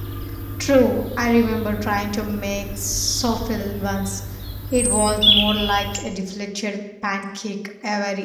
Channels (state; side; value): identical; both; correlation 1.00